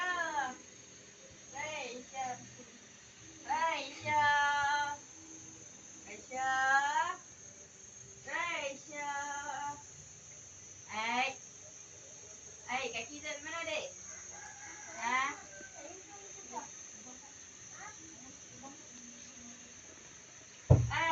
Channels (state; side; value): identical; both; correlation 1.00